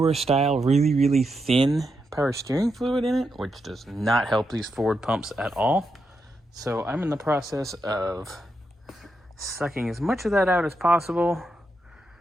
style, really thin power steering fluid in it, which does not help these forward pumps at all. So I'm in the process of sucking as much of that out as possible.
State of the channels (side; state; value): both; normal; correlation 0.84